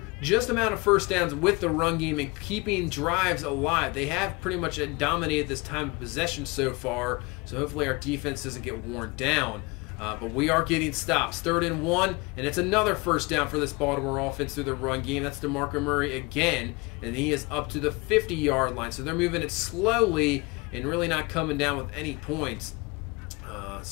just amount of first downs with the run game and keeping drives alive. They have pretty much dominated this time of possession so far, so hopefully our defense doesn't get worn down. But we are getting stops. 3rd and 1, and it's another first down for this Baltimore offense through the run game. That's DeMarco Murray again, and he is up to the 50-yard line. So they're moving it slowly and really not coming down with any points.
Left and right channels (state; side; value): quieter; right; 25.8 dB